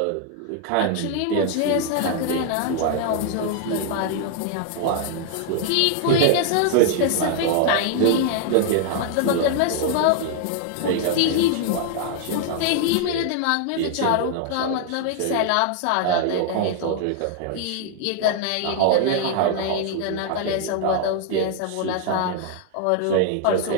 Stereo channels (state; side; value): different; both; correlation 0.00